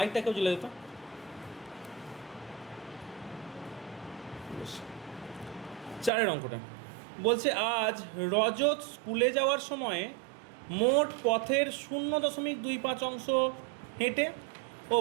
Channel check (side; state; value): left; drops out; at 6.1 s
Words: কেউ জ্বলে দিত। বেশ, 4 অঙ্কটা বলছে, আজ রজত স্কুলে যাওয়ার সময়ে মোট পথের 0.25 অংশ হেঁটে ও